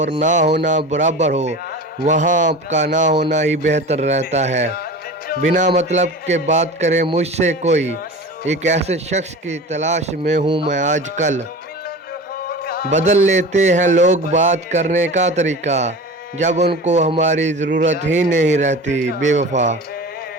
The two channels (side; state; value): both; normal; correlation 0.34